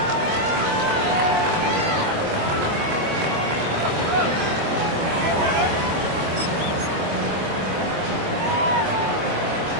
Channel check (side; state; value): left; late; 25 ms